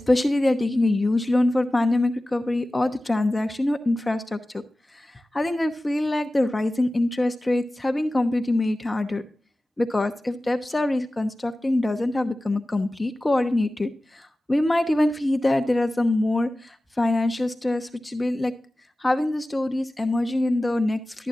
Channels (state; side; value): normal; both; correlation 0.96